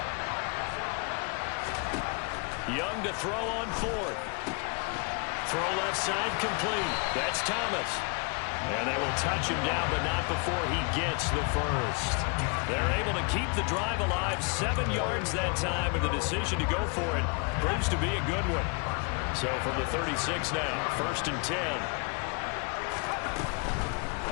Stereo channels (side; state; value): right; quieter; 34.4 dB